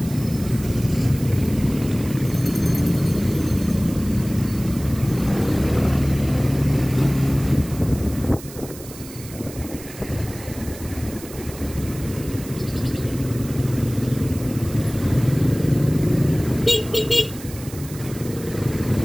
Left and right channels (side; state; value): right; noise; hiss, 16 dB below the sound